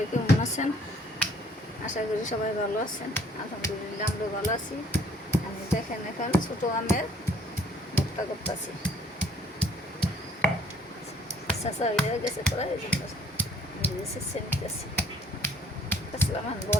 কেমন আছেন? আশা করি সবাই ভালো আছেন। আলহামদুলিল্লাহ আমরা ভালো আছি। আমি দেখেন এখন ছোটো আমের ভর্তা করতেছি। চাষা হয়ে গেছে প্রায় এই জন্য নিতেছি। আসলাম এখন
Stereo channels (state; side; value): normal; both; correlation 0.59